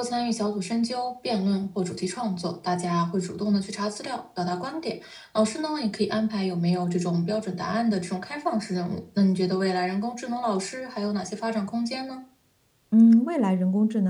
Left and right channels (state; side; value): identical; both; correlation 1.00